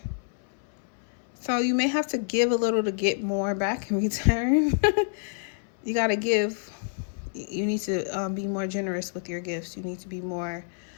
So you may have to give a little to get more back in return. You got to give. You need to be more generous with your gifts. You need to be more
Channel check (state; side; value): silent; right; 60 dB below the other